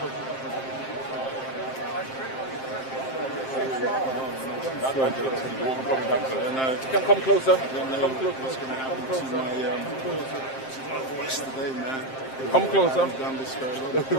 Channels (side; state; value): right; late; 7.6 ms